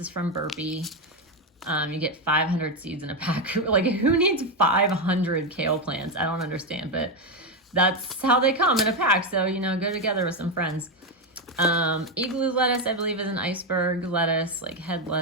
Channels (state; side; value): normal; both; correlation 0.08